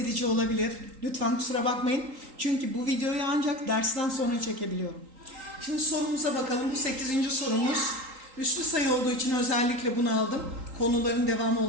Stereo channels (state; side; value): late; left; 3.8 ms